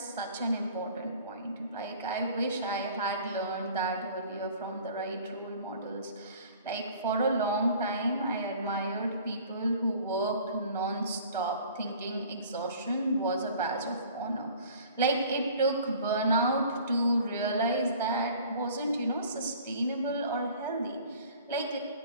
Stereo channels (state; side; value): inverted; both; correlation -0.49